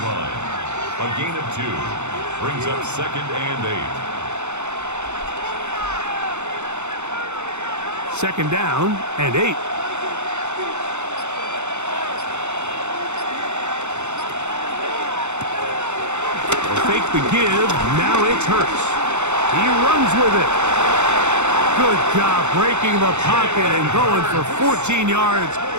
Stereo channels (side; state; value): left; late; 0.83 ms